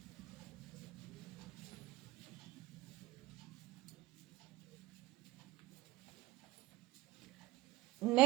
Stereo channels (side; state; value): left; quieter; 18.4 dB